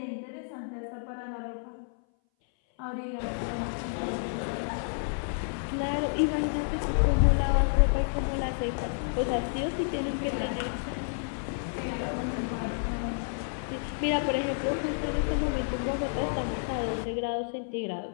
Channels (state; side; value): silent; right; 58 dB below the other